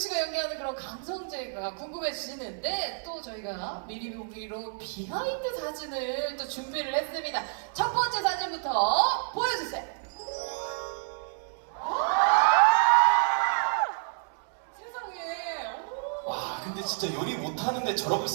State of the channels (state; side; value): silent; left; 58 dB below the other